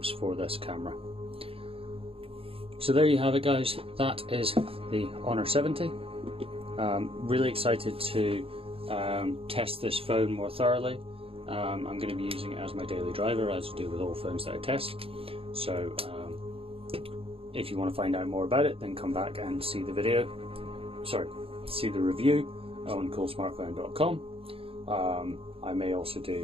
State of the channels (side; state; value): left; late; 0.27 ms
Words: for this camera. So there you have it, guys. That is the Honor 70. Really excited to test this phone more thoroughly. I'm going to be using it as my daily driver, as I do with all phones that I test. So if you want to find out more about it, then come back and see the see the review on Coolsmartphone.com. I may also